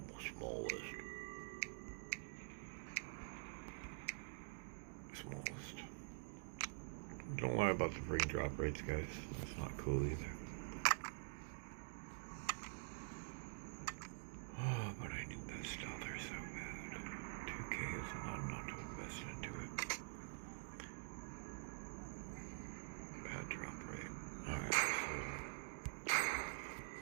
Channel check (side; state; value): left; silent; digital silence